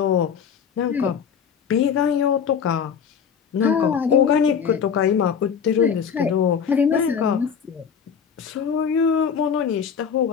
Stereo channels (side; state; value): right; quieter; 7.1 dB